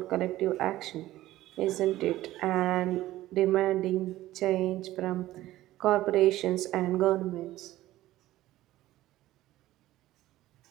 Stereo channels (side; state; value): left; quieter; 15.5 dB